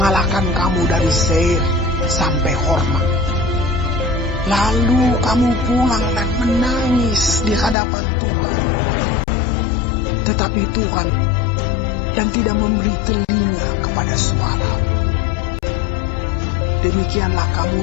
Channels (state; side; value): drops out; right; at 7.8 s